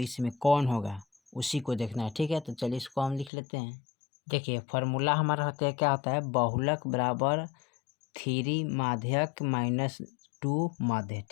कौन होगा उसी को देखना है। ठीक है, तो चलिए इसको हम लिख लेते हैं। देखिए फार्मूला हमारा होता है, क्या होता है, बहुलक बराबर 3 माध्यक माइनस 2 माध्य।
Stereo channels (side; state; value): right; drops out; at 3.3 s